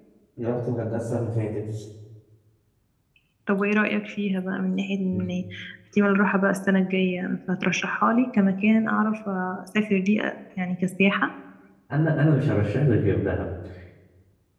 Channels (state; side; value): identical; both; correlation 1.00